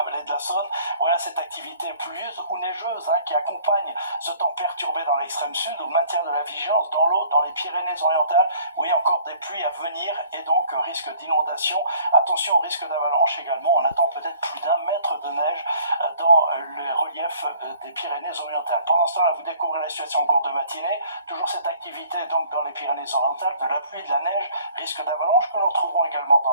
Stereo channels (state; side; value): inverted; both; correlation -0.56